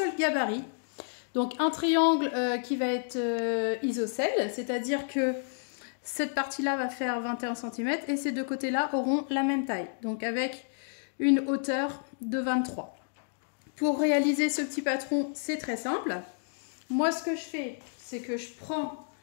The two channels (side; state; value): right; silent; digital silence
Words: gabarit. Donc un triangle qui va être isocèle, c'est-à-dire que cette partie-là va faire 21 cm et ces deux côtés-là auront la même taille, donc avec une hauteur de 23. Pour réaliser ce petit patron, c'est très simple. Moi, ce que je fais, c'est que je prends